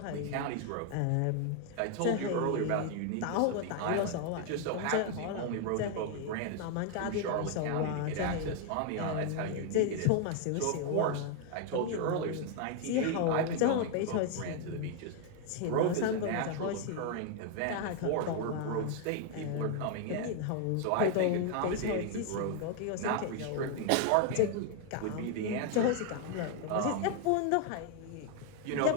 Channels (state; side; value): different; both; correlation 0.00